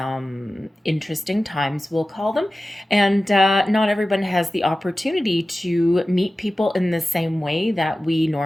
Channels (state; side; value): normal; both; correlation 0.95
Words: interesting times, we'll call them. And not everyone has the opportunity to meet people in the same way that we